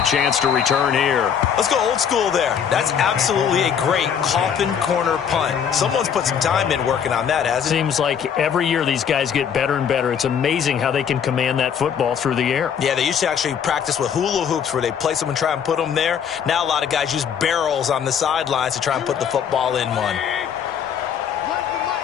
chance to return here. Let's go old school there. That's absolutely a great coffin corner punt. Someone's put some time in working on that, hasn't it? Seems like every year these guys get better and better. It's amazing how they can command that football through the air. Yeah, they used to actually practice with hula hoops where they place them and try and put them there. Now a lot of guys use barrels on the sidelines to try and put the football in one.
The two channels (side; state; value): right; quieter; 7.9 dB